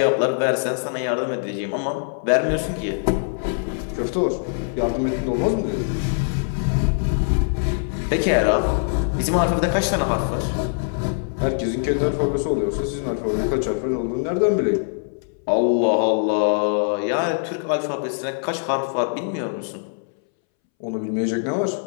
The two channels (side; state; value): right; silent; 64 dB below the other